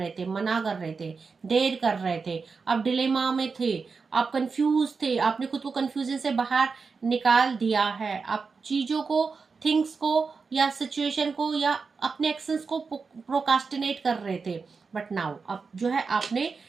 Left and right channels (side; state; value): left; quieter; 4.9 dB